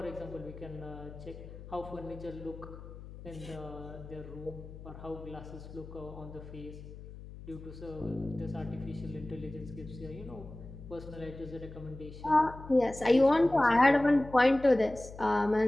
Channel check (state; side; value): noise; left; hum, 14 dB below the sound